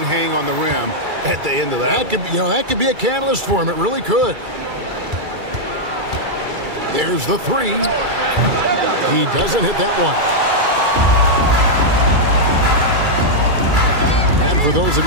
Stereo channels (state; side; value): late; left; 2.3 ms